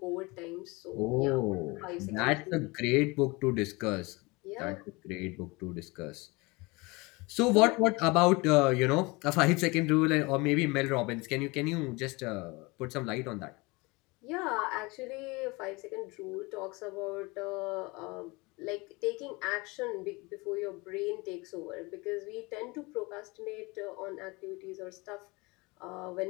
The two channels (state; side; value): quieter; right; 25.2 dB